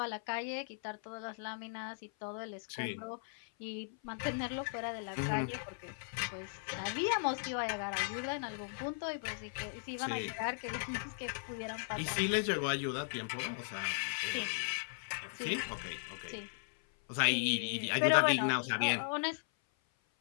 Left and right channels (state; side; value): silent; right; 53 dB below the other